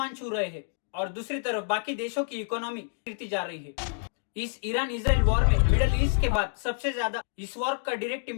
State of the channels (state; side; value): silent; right; digital silence